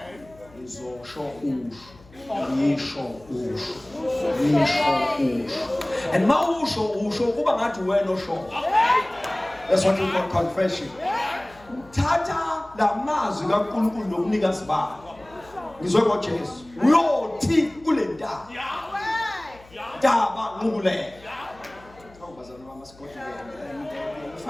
Izosho and mausho kuba ngathi wena osho. That's what we call confession. Uthatha la mazwi kaNkulunkulu nokunikazi bakhe ngizwe ngoJesu uyothi kule ndaba nqubule awubazana bamasikoti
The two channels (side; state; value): left; noise; hum, 24 dB below the sound